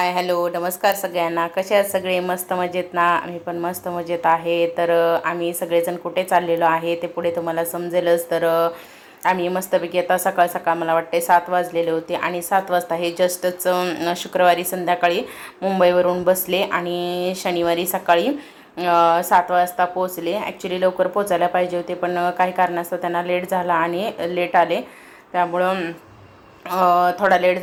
hello नमस्कार सगळ्यांना. कसे आहात सगळे? मस्त मजेत ना? आम्ही पण मस्त मजेत आहे. तर आम्ही सगळेजण कुठे चाललेलो आहे ते पुढे तुम्हाला समजेलच. तर आम्ही मस्तपैकी आता सकाळ सकाळ मला वाटते 7 वाजलेले होते आणि 7 वाजता हे जस्टच शुक्रवारी संध्याकाळी मुंबईवरून बसले आणि शनिवारी सकाळी 7 वाजता पोचले. ॲक्च्युली लवकर पोचायला पाहिजे होते पण काही कारणास्तव त्यांना लेट झाला आणि लेट आले, त्यामुळं थोडा लेट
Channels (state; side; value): identical; both; correlation 1.00